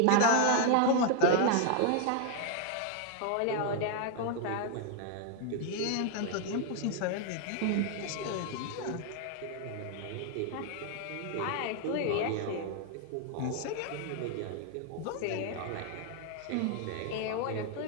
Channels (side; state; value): both; different; correlation 0.00